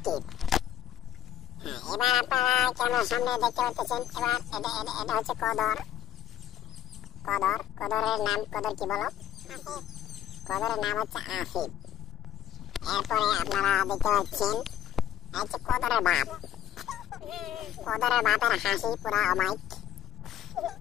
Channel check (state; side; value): quieter; right; 11.8 dB